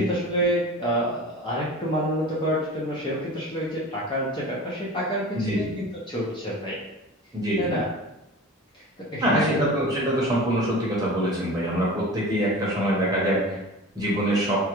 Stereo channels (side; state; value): both; normal; correlation 0.36